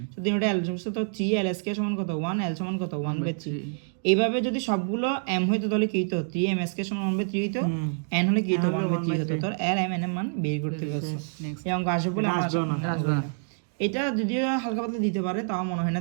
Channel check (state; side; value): silent; left; 60 dB below the other